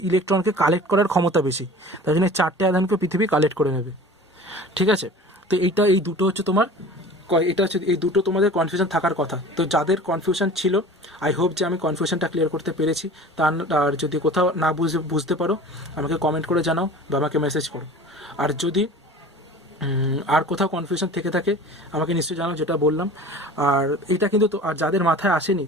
ইলেকট্রনকে কালেক্ট করার ক্ষমতা বেশি, তাই জন্য 4টে আধানকে পৃথিবী কালেক্ট করে নেবে, ঠিক আছে। তো এই দুটো হচ্ছে তোমার, এই দুটো তোমাদের কনফিউশন থাকার কথা। তো যাদের কনফিউশন ছিল, আই হোপ যে আমি কনফিউশনটা ক্লিয়ার করতে পেরেছি। আর যদি কোথাও না বুঝতে পারো আমাকে কমেন্ট করে জানাও বা আমাকে মেসেজ করো। আর যদি আর কোথাও কনফিউশন থেকে থাকে আমাকে নিশ্চয়ই জানাও, যেটা বললাম। আর এটা কিন্তু আর যাদের মাথায় আসেনি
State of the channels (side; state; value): both; normal; correlation 0.41